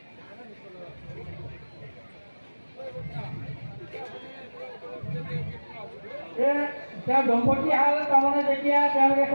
তেওঁ দম্পতী হাল তাৰমানে যেতিয়া তেওঁলোকে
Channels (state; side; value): inverted; both; correlation -1.00